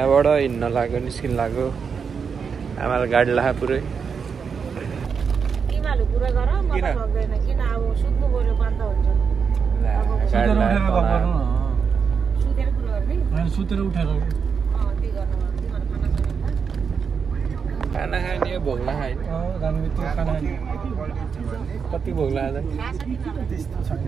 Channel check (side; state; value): left; quieter; 6.1 dB